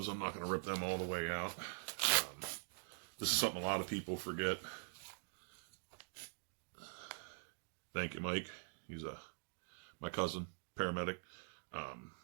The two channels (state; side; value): silent; left; digital silence